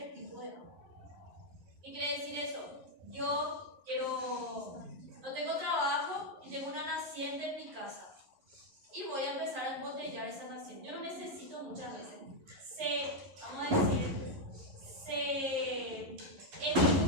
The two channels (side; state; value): left; late; 11 ms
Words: tipo de agua. ¿Qué quiere decir eso? Yo no tengo trabajo y tengo una naciente en mi casa y voy a empezar a embotellar esa naciente. Yo no necesito muchas veces. Es